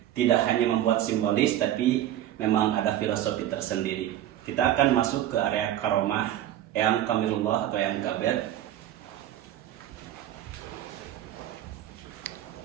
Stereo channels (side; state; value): left; quieter; 12.3 dB